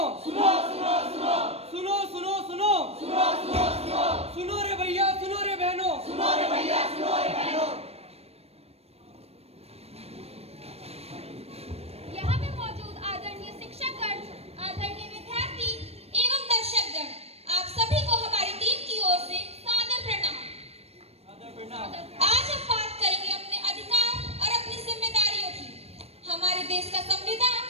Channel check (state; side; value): late; left; 0.30 ms